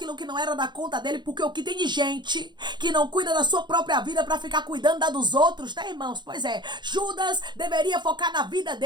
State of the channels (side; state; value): left; late; 0.21 ms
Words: que não era da conta dele, porque o que tem de gente que não cuida da sua própria vida para ficar cuidando da dos outros, né, irmãos? Pois é, Judas deveria focar na vida